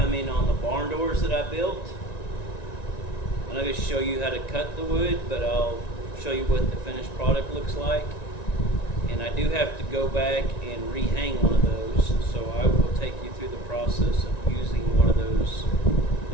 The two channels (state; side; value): late; right; 1.9 ms